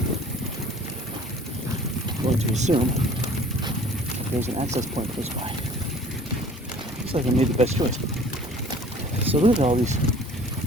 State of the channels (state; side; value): normal; both; correlation 0.50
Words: I'm going to assume that there's an access point close by. Looks like I made the best choice. So look at all these